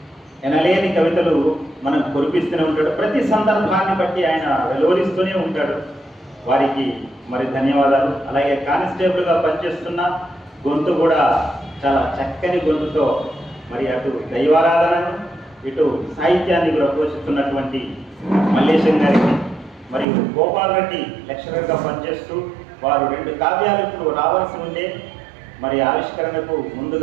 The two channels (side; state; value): left; drops out; at 20.1 s